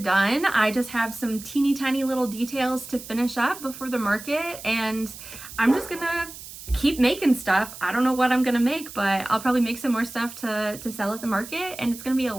I just have some teeny tiny little details to finish up before the market, and I'm just gonna keep making stuff. I don't know what I'm gonna make, but I'll probably make some more stuff to sell at the market, and it's gonna be a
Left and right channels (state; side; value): noise; right; hiss, 14 dB below the sound